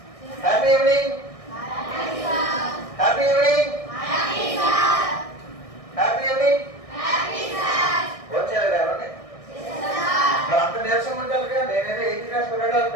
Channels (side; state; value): right; late; 1.6 ms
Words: Happy evening. Happy evening. Happy evening. వచ్చారు ఎవరండి? మరి అంత నీరసం ఉంటారుగా. నేనేదో 8th క్లాస్ పిల్లలు